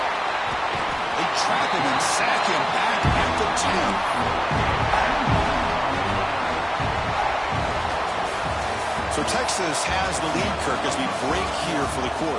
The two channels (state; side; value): identical; both; correlation 1.00